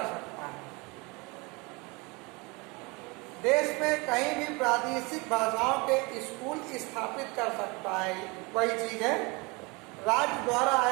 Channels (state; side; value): quieter; left; 27.1 dB